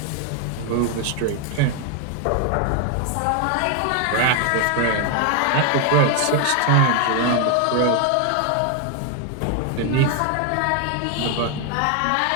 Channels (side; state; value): both; different; correlation 0.01